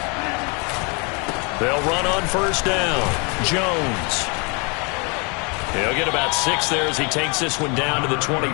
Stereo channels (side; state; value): right; quieter; 32.6 dB